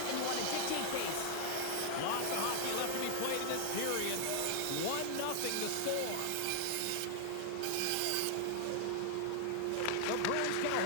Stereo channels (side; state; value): both; different; correlation 0.00